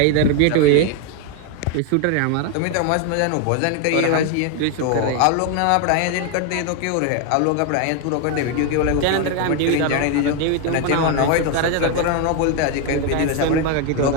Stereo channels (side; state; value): both; different; correlation 0.01